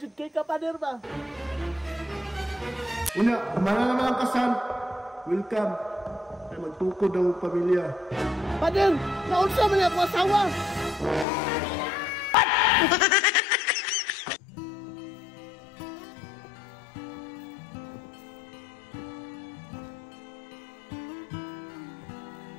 jud kay ka pader ba? Una, kumana naman ang kasal. Welcome. Ay magtukod ang pamilya. Pader, naunsa man ako asawa.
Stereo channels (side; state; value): right; drops out; at 11.2 s